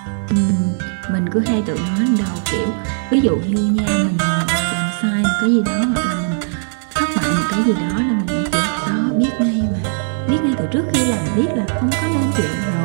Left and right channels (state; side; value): silent; left; digital silence